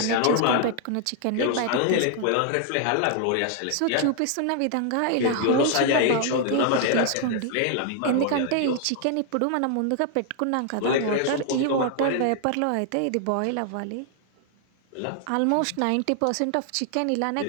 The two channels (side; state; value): both; different; correlation 0.00